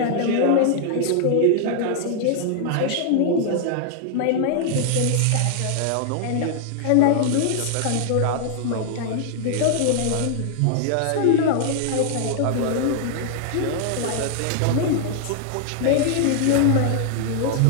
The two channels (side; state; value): both; different; correlation 0.00